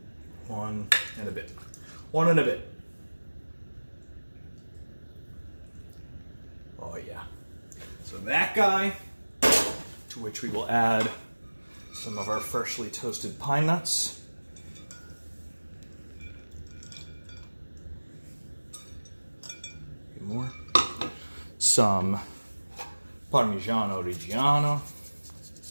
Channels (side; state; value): both; inverted; correlation -1.00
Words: One and a bit. One and a bit. Oh yeah. So that guy, to which we will add some of our freshly toasted pine nuts. More. Some Parmigiano Reggiano.